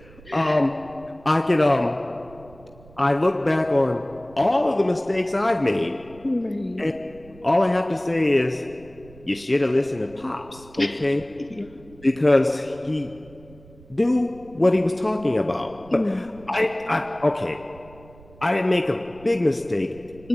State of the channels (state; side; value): noise; right; rumble, 23 dB below the sound